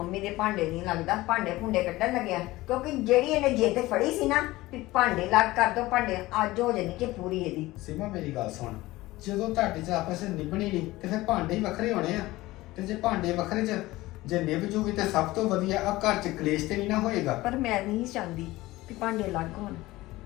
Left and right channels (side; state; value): right; quieter; 18.6 dB